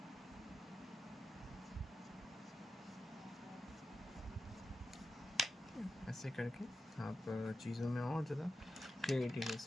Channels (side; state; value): both; normal; correlation 0.91